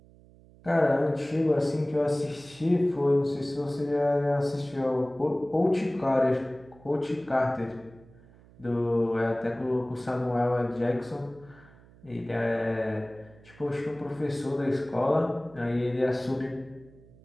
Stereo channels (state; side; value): noise; right; hum, 25 dB below the sound